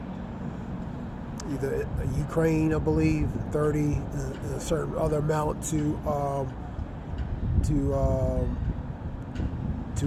either Ukraine, I believe, 30, a certain other amount to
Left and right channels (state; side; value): identical; both; correlation 1.00